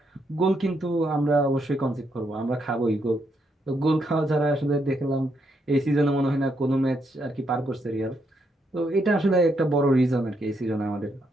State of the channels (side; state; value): both; normal; correlation 0.78